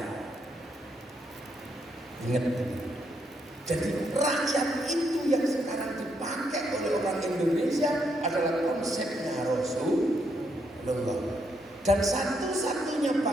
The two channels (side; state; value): both; normal; correlation 0.77